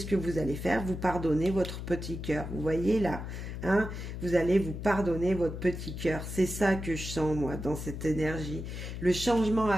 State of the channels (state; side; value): noise; left; hum, 7 dB below the sound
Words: que vous allez faire? Vous pardonnez votre petit cœur. Vous voyez là, hein? Vous allez vous pardonner votre petit cœur. C'est ça que je sens, moi, dans cette énergie. Le changement à